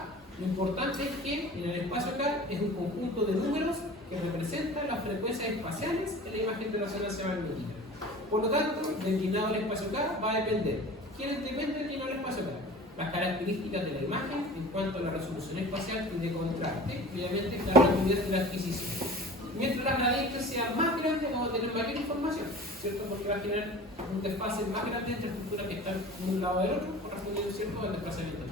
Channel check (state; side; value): normal; both; correlation 0.40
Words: lo importante es que en el espacio K es un conjunto de números que representan las frecuencias espaciales en la imagen de resonancia magnética. Por lo tanto, del inclinado del espacio K va a depender. ¿Quién depende del inclinado del espacio K? Las características de la imagen en cuanto a la resolución espacial y de contraste, y obviamente la rapidez de la adquisición. Mientras las gradientes sean más grandes, vamos a tener mayor información, ¿cierto? Porque va a tener un desfase más grande entre estructuras que están en un lado del otro, correspondiendo, ¿cierto?, al desplazamiento.